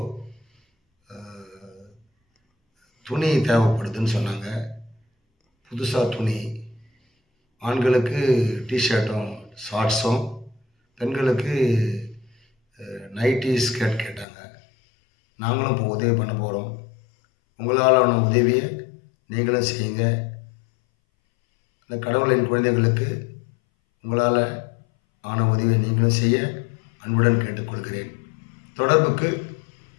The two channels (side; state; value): right; drops out; at 14.2 s